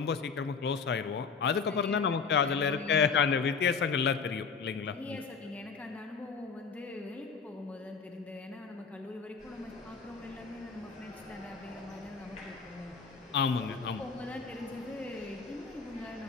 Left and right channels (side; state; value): right; quieter; 5.5 dB